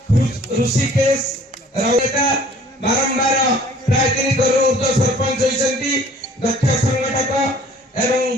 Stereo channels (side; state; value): both; normal; correlation 0.53